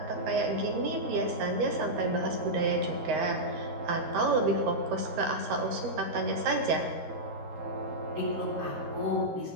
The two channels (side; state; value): left; late; 13 ms